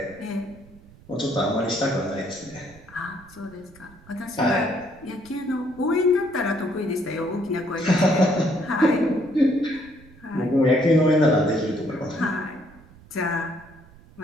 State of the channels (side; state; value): right; noise; rumble, 23 dB below the sound